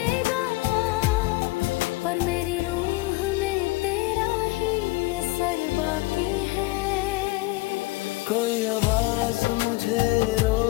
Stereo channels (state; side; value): quieter; right; 22.1 dB